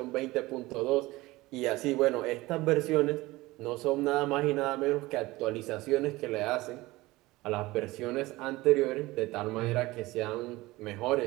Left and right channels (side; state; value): left; quieter; 19.8 dB